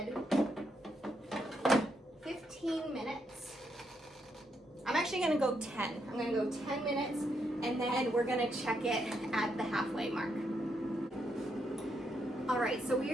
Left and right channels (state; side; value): normal; both; correlation 0.79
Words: 15 minutes. I'm actually gonna go 10. I'm gonna go 10 minutes and then we're gonna check it at the halfway mark. All right, so